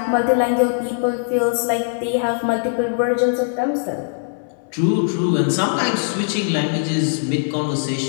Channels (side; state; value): right; silent; 65 dB below the other